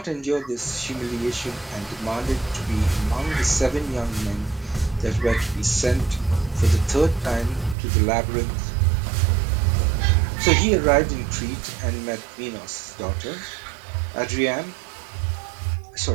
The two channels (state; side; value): drops out; left; at 7.8 s